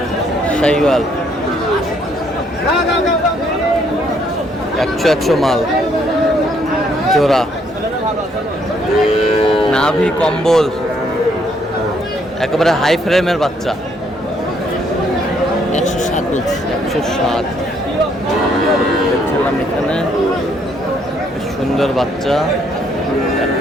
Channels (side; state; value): both; normal; correlation 0.69